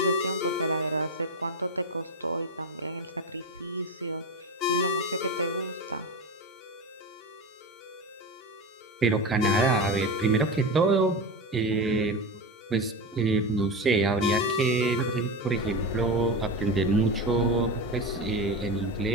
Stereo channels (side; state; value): both; normal; correlation 0.21